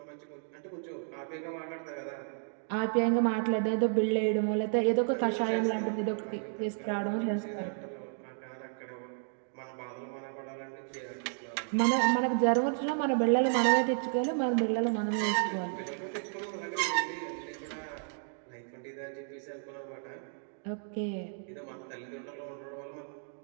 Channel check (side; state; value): left; silent; 56 dB below the other